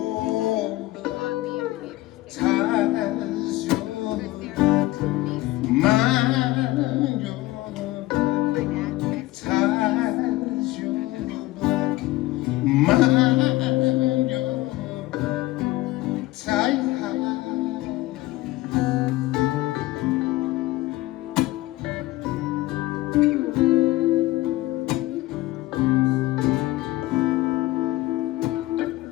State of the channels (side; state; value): right; quieter; 18.0 dB